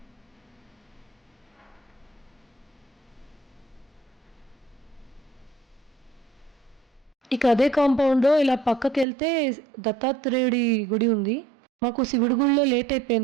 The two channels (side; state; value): left; drops out; at 9.1 s